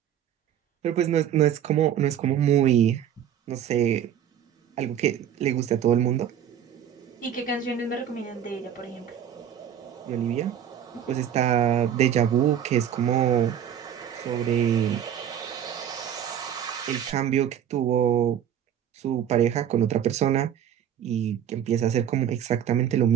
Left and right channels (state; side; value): quieter; left; 9.6 dB